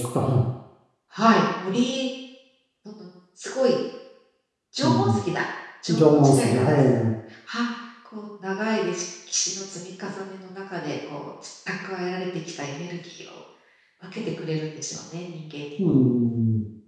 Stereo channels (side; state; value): both; identical; correlation 1.00